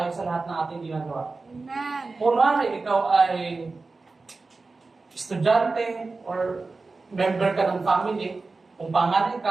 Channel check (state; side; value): quieter; left; 3.8 dB